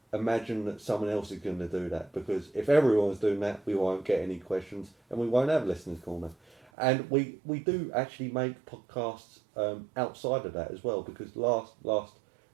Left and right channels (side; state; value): left; drops out; at 6.7 s